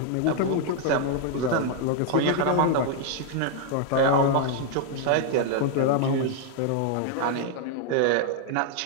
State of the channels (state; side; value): different; both; correlation 0.00